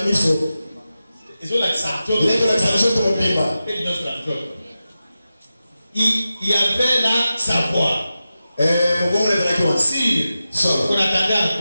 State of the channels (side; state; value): both; inverted; correlation -0.93